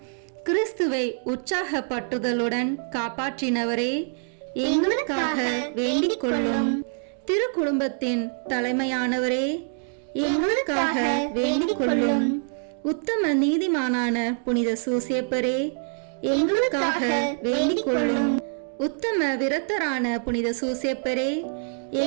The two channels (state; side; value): silent; left; 57 dB below the other